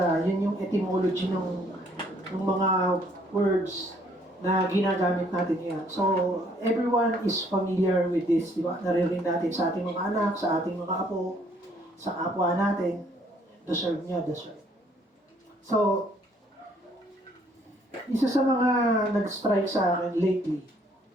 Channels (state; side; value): normal; both; correlation 0.64